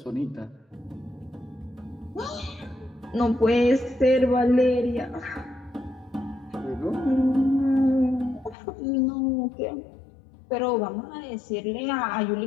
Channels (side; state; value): right; drops out; at 8.6 s